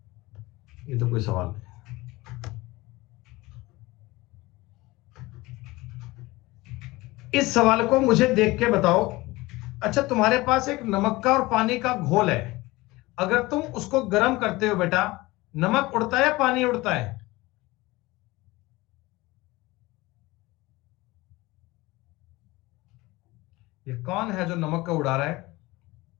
ये तो कोई सवाल नहीं। इस सवाल को मुझे देख के बताओ। अच्छा, तुम्हारे पास एक नमक का और पानी का घोल है, अगर तुम उसको गर्म करते हो बेटा, नमक उड़ता है या पानी उड़ता है? ये कौन है जो नमक का उड़ा रहा है?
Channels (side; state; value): right; quieter; 20.8 dB